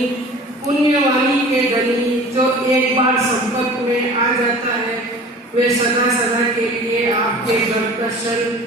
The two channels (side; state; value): both; normal; correlation 0.42